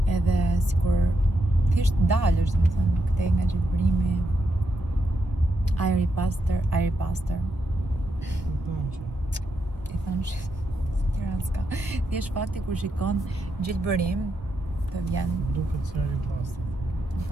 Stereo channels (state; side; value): normal; both; correlation 0.83